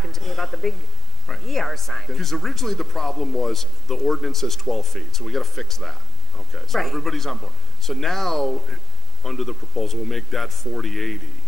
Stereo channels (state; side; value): normal; both; correlation 0.06